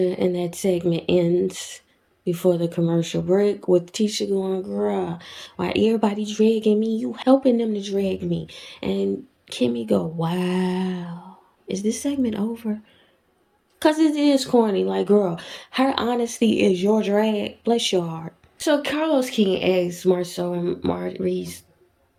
in that segment ends before the commercial break with Tisha going, girl, why everybody dragging me? You helping them to drag me. And Kimmi go, wow. Is this segment over? Because it is corny. Like, girl, her honesty is your drag. Bless your heart. So Carlos King asks Marceau and Maurice,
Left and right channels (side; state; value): both; identical; correlation 1.00